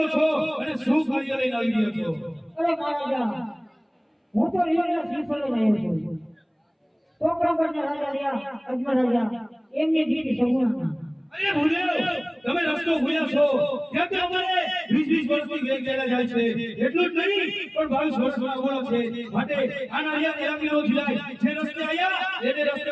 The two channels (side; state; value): both; identical; correlation 1.00